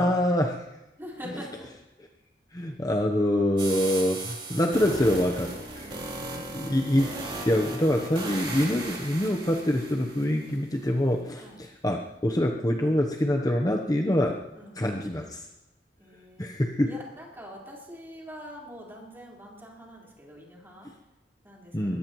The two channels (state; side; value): normal; both; correlation 0.82